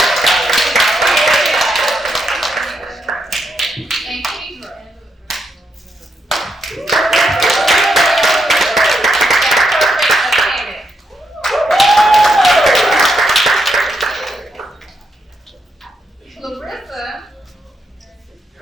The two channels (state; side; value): normal; both; correlation 0.80